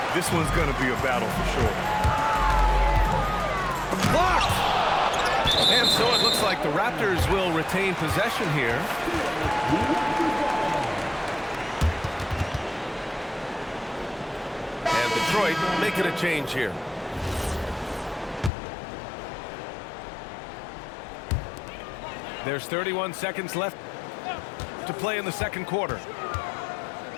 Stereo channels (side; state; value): right; drops out; at 18.5 s